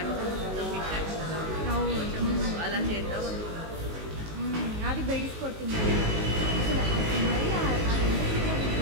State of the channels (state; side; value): late; left; 19 ms